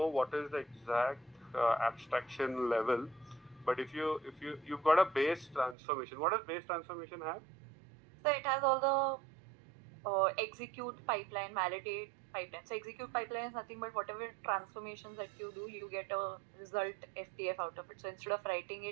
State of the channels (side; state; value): left; drops out; at 5.8 s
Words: what is the exact abstraction level, but if you've got a base transformation, what does base transformation have? So it has all the execute pipeline, validate pipeline. So execute pipeline is nothing but whatever transformations that you do, you get a result FTF out of it. So instead of writing